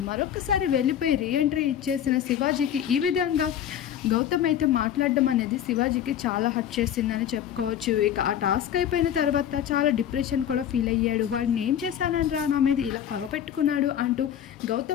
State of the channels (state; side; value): quieter; right; 10.1 dB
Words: మరొకసారి వెళ్ళిపోయి రీఎంట్రీ ఇచ్చేసిన శివాజీకి ఈ విధంగా గౌతమ్ అయితే మాట్లాడడం అనేది శివాజీకి చాలా హర్ట్ చేసిందని చెప్పుకోవచ్చు. ఇక ఆ టాస్క్ అయిపోయిన తర్వాత చాలా డిప్రెషన్ కూడా ఫీల్ అయ్యాడు. వాడిని ఏం చేశానని రా నా మీద ఇలా పగపెట్టుకున్నాడు అంటూ